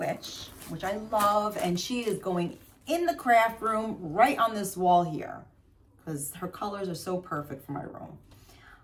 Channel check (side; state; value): both; identical; correlation 1.00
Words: which I love, and she is going in the craft room right on this wall here because her colors are so perfect for my room.